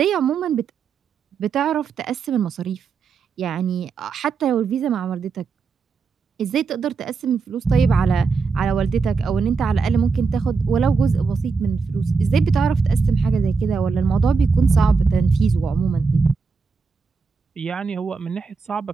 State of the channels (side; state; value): left; quieter; 4.9 dB